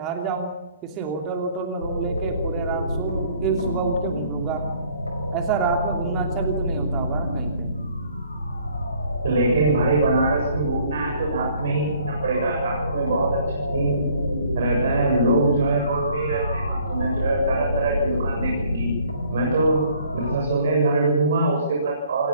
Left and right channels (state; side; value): inverted; both; correlation -0.60